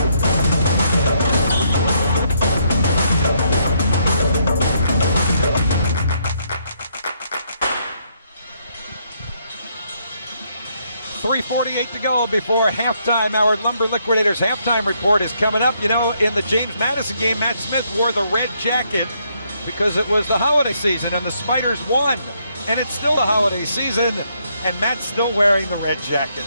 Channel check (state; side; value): inverted; both; correlation -0.73